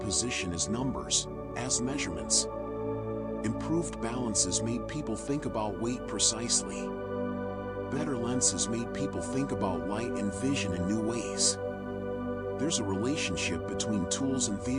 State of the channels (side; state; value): both; identical; correlation 1.00